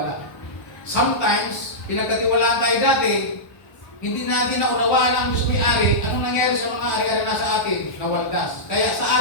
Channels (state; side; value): late; right; 1.1 ms